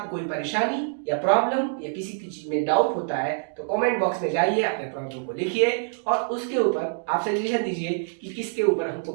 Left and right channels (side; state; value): left; silent; digital silence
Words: कोई परेशानी या प्रॉब्लम या किसी की चीज में डाउट होता है तो कमेंट बॉक्स में जाइए, अपने प्रॉब्लम को लिखिए और उसके ऊपर आप सजेशन दीजिए कि किसके ऊपर हमको